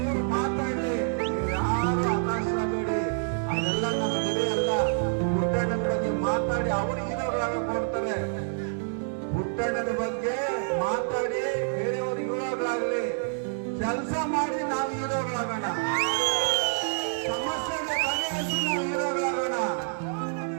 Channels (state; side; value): silent; left; digital silence